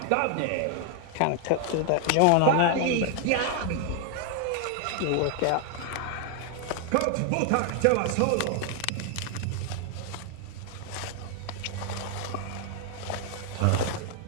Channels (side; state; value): both; different; correlation 0.00